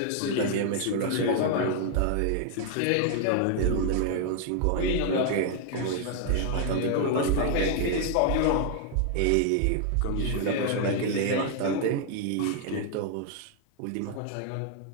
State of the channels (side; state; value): both; different; correlation 0.00